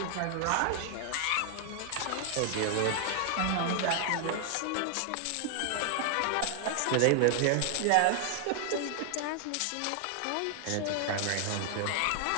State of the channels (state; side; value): different; both; correlation 0.00